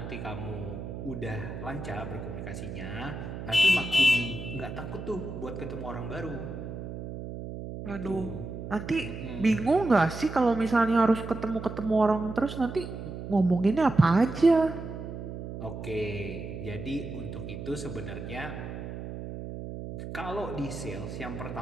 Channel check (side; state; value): right; noise; hum, 8 dB below the sound